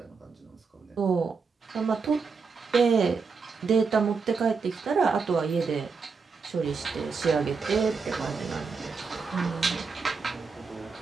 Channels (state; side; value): quieter; left; 5.0 dB